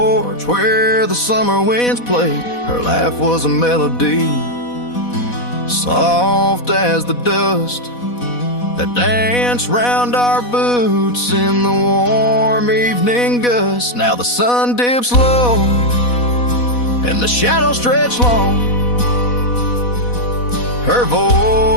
where the summer winds played. Her laugh was a melody, soft as the dust that danced round our boots in the warm evening gust. Now the sun dips low and the shadows stretch long. Her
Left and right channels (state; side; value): late; right; 4.1 ms